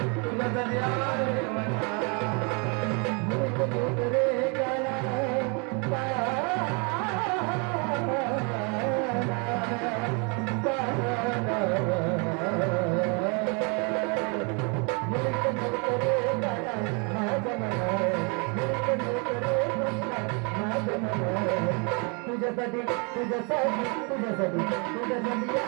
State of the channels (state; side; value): quieter; left; 33.9 dB